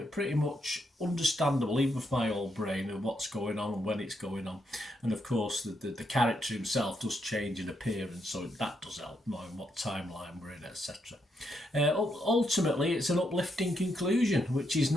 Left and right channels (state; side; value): normal; both; correlation 0.79